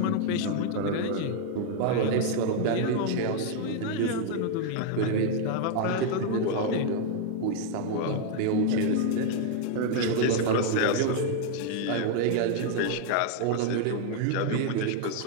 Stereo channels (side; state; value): both; different; correlation 0.00